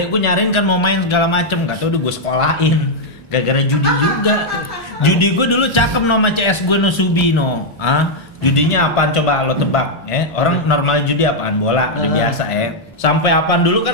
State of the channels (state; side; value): normal; both; correlation -0.02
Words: gue nyariin kan mau main segala macem, nggak tahu udah gue sekolahin. Gara-gara judi juga. Judi gue dulu cakep nama CS gue no Subino. Judinya apaan coba lo tebak? Orang normal judi apaan? Bola, udah biasa Sampai apaan dulu